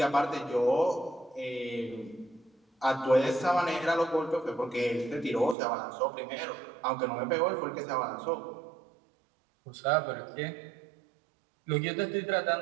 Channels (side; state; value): left; drops out; at 5.6 s